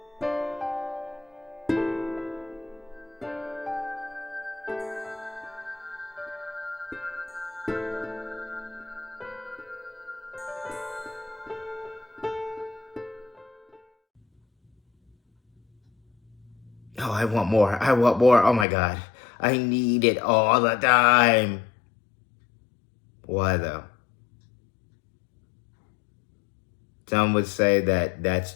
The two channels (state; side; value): drops out; right; at 18.7 s